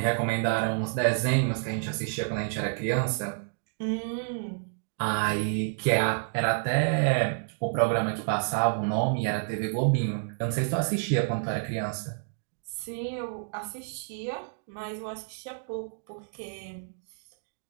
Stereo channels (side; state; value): left; silent; digital silence